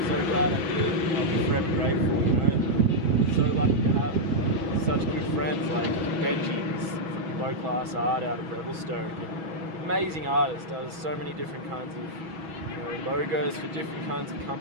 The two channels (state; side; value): late; left; 6.2 ms